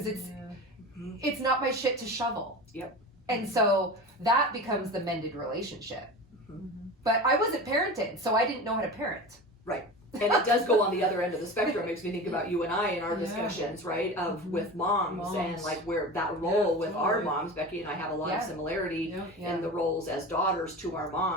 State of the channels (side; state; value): both; normal; correlation 0.31